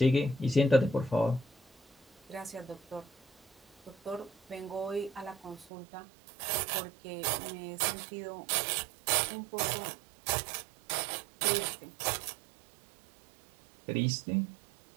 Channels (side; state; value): left; drops out; at 5.7 s